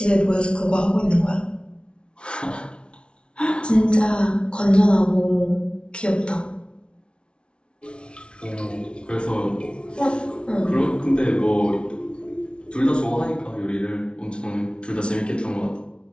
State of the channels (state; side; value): late; right; 0.057 ms